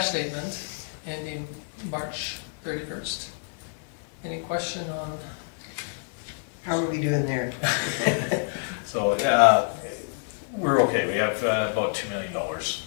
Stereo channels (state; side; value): silent; right; digital silence